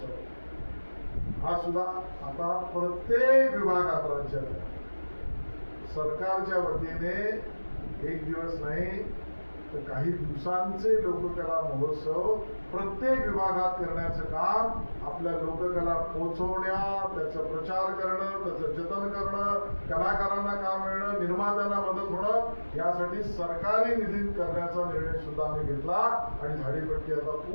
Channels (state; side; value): inverted; both; correlation -1.00